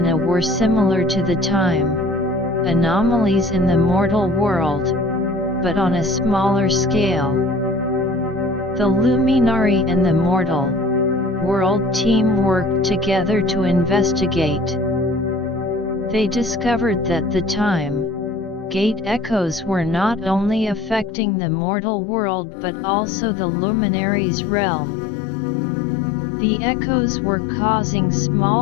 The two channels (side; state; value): right; drops out; at 21.2 s